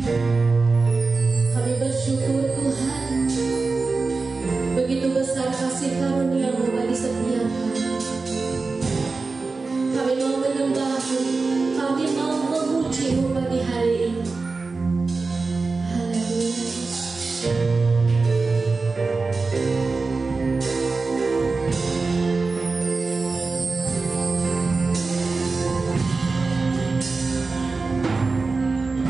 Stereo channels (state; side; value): quieter; left; 4.0 dB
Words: Kami bersyukur Tuhan, begitu besar kasih karunia-Mu bagi setiap kami. Kami mau menyembah-Mu, kami mau memuji-Mu pagi hari ini. Haleluya.